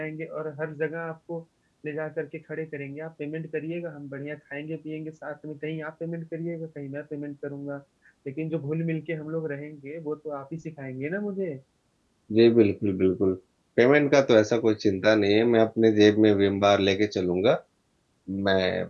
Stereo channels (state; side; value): identical; both; correlation 1.00